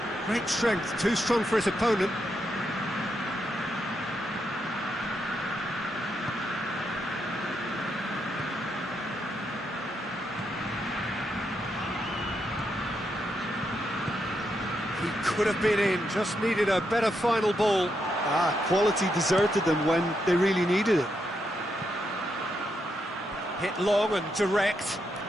Great strength, too strong for his opponent. He could have been in, just needed a better final ball. Quality deserted them when they really needed it. Hit long and direct.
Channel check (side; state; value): both; normal; correlation 0.81